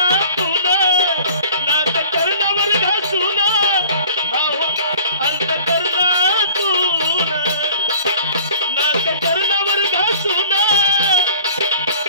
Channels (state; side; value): inverted; both; correlation -0.47